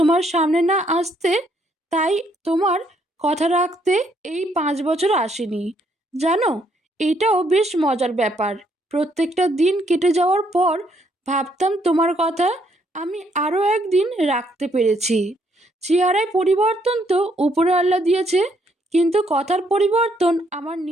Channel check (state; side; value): normal; both; correlation 0.71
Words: সামনে না আসতে, তাই তোমার কথা রাখতে এই 5 বছর আসেনি। জানো, এটাও বেশ মজার ব্যাপার। প্রত্যেকটা দিন কেটে যাওয়ার পর ভাবতাম তোমার কথা। আমি আরও একদিন রাখতে পেরেছি। চেহারায় পরিবর্তন তো উপরে আল্লাহ দিয়েছে, কিন্তু কথার পরিবর্তন আমার